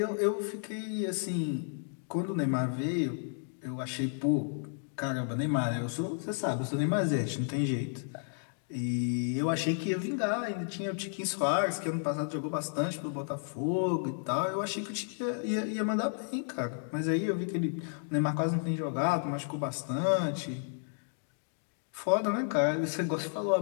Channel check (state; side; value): silent; right; digital silence